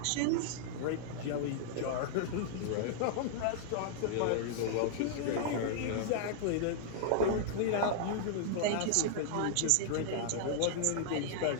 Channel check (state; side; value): different; both; correlation -0.01